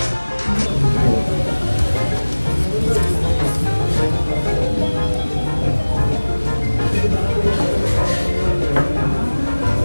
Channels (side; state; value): both; inverted; correlation -1.00